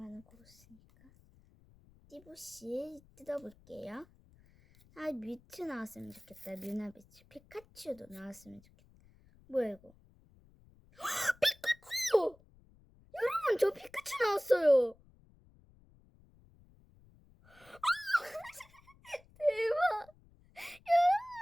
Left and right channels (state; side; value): noise; left; rumble, 28 dB below the sound